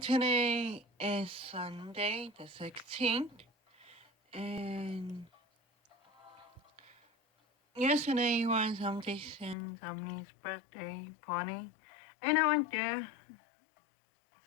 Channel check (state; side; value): drops out; right; at 9.6 s